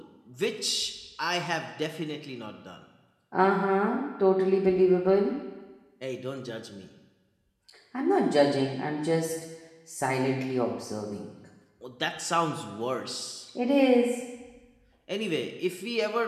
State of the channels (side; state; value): both; identical; correlation 1.00